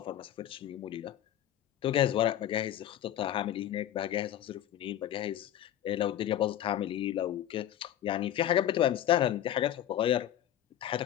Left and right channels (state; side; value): quieter; right; 11.6 dB